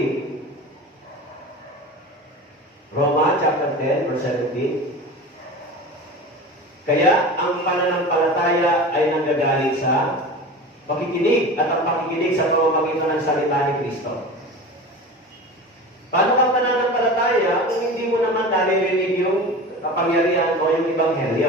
Roma, chapter 10, verse 17. Kaya, ang pananampalataya ay nanggagaling sa pakikinig at ang pakikinig sa pamamagitan ng salita ni Kristo. Paano ka pananampalataya kung hindi mo naman naririnig yung kapangyarihan o yung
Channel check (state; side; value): normal; both; correlation 0.32